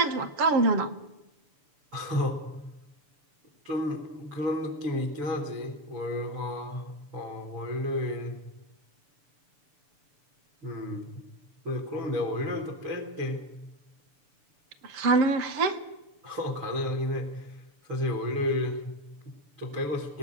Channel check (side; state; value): left; late; 6.9 ms